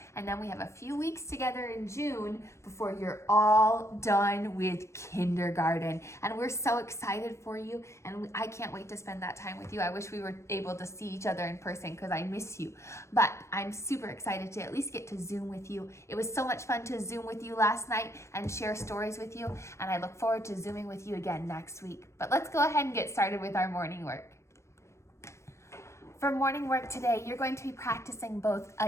And then we have a few weeks together in June before you're all done with kindergarten. And we're so excited for you. And I can't wait to spend that time with you. I wish we were able to see each other in person because I miss you. But I'm super excited to at least get to Zoom with you. It was so much fun to Zoom with you last night and share stories with you. And I look forward to Zooming with you again next week. But let's go ahead and get started with our morning work. For morning work today, you're going to be practicing both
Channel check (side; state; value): right; late; 0.14 ms